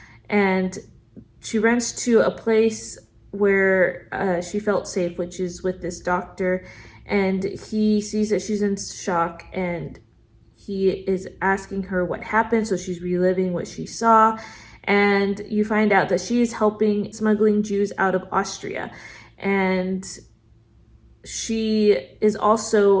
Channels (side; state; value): both; identical; correlation 1.00